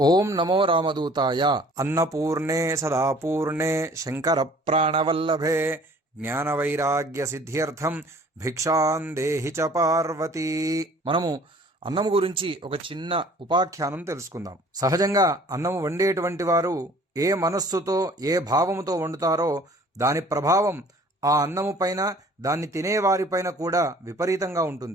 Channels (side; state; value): both; normal; correlation 0.52